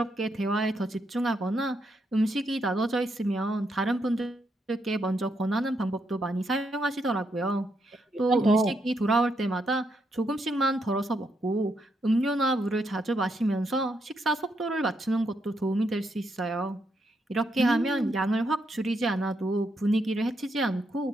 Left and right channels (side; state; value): both; normal; correlation 0.79